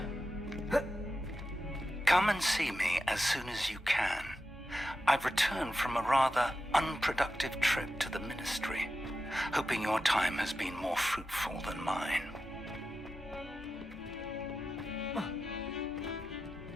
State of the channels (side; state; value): both; normal; correlation 0.91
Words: see me as soon as you can. I've returned from a rather unproductive trip to the Ministry, hoping your time has been more fruitful than mine.